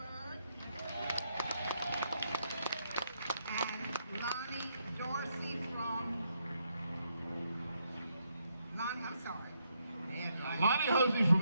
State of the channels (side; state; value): both; inverted; correlation -0.76